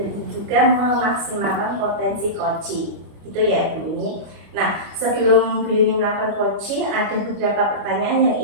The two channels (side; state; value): left; late; 25 ms